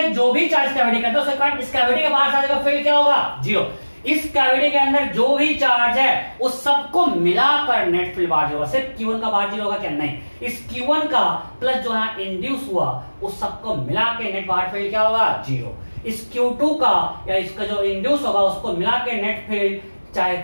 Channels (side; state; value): both; inverted; correlation -1.00